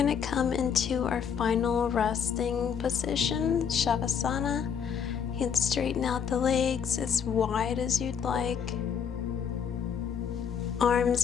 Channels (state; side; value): quieter; right; 7.4 dB